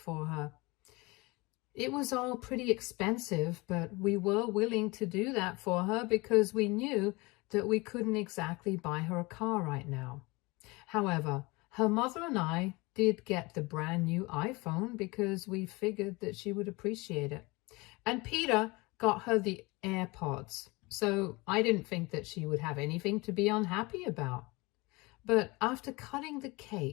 her. It was all pretty expensive, but we were willing to do that for her because we knew that we couldn't exactly buy her a car right now. However, her mother and I did get the brand new iPhone because we figured that she would appreciate it. And Peter got her the AirPods, so I didn't think that she would have anything to be unhappy about. But after cutting the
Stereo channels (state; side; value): quieter; right; 24.4 dB